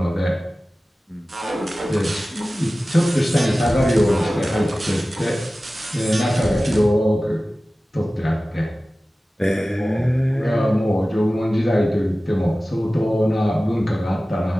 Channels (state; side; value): normal; both; correlation 0.96